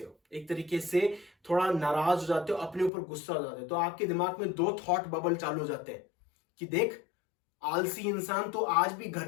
हो, एक तरीके से थोड़ा नाराज हो जाते हो, अपने ऊपर गुस्सा हो जाते हो। तो आपके दिमाग में 2 थॉट बबल चालू हो जाते हैं कि देख, आलसी इंसान, तो आज भी घर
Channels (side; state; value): right; drops out; at 2.9 s